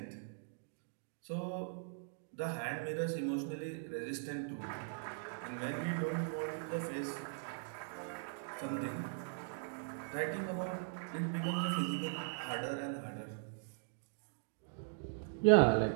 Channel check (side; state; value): left; silent; digital silence